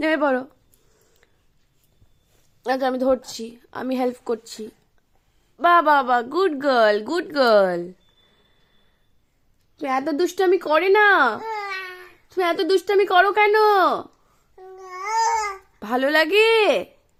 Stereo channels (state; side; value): identical; both; correlation 1.00